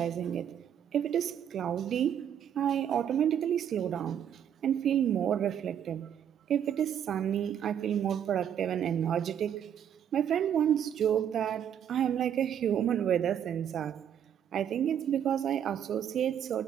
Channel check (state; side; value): quieter; left; 9.2 dB